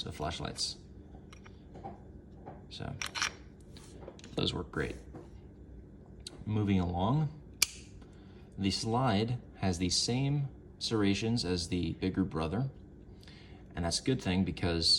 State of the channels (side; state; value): both; identical; correlation 1.00